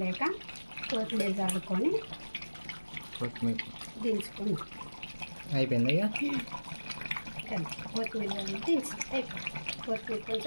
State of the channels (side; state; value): both; inverted; correlation -1.00